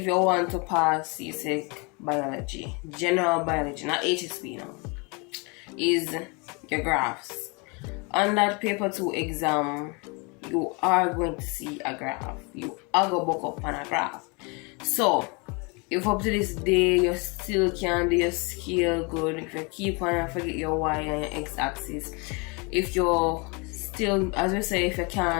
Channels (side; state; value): right; quieter; 30.4 dB